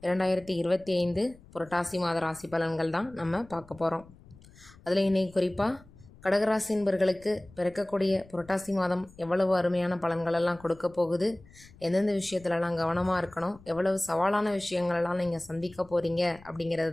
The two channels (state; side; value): noise; left; rumble, 23 dB below the sound